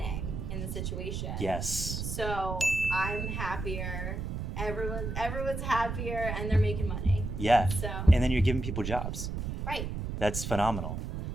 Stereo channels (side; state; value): right; noise; rumble, 4 dB below the sound